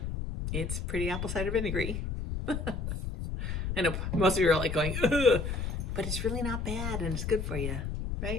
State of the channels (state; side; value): noise; left; rumble, 3 dB below the sound